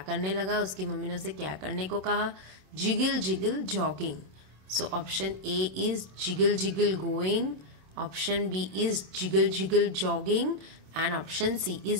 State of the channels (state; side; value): late; left; 27 ms